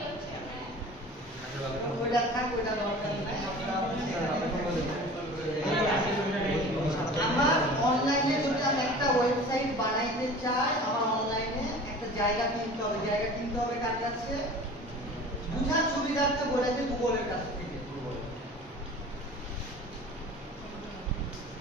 ওইটা থাক, ওইটা দরকার নাই। আমার অনলাইনে যদি আমি একটা ওয়েবসাইট বানাইতে চাই, আমার অনলাইনে একটা জায়গা কিনতে হবে। জায়গা কিনতে হবে কার কাছে? বুঝার সুবিধার্থে বলেছে গুগলের কাছ থেকে।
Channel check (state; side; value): normal; both; correlation 0.41